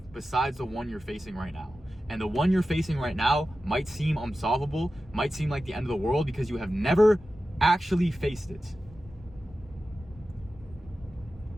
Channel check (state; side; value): normal; both; correlation 0.93